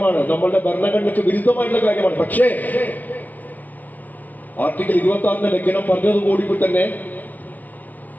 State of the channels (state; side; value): late; right; 0.083 ms